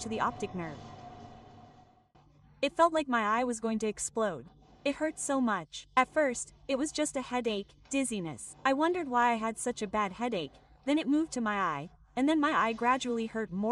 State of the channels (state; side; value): identical; both; correlation 1.00